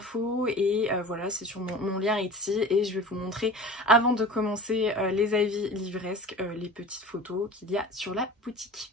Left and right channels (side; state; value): both; normal; correlation 0.38